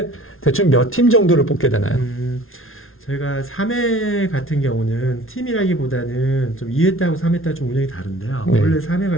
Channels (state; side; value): late; right; 0.61 ms